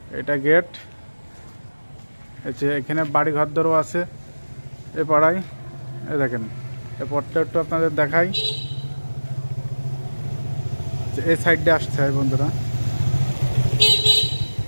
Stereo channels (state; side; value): inverted; both; correlation -1.00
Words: এটা গেট, এখানে বাড়ি ঘরদরও আছে এ পাড়ায়। এই দেখেন, এই পথটা একটু আপনাদের দেখাই। এই সাইডে আসতে হয় বন্ধুরা।